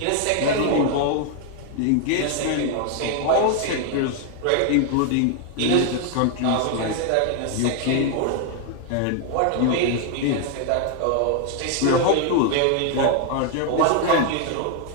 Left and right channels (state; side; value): different; both; correlation 0.00